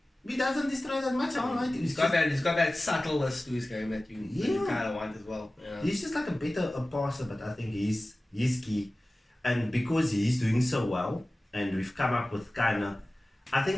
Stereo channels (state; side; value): normal; both; correlation 0.97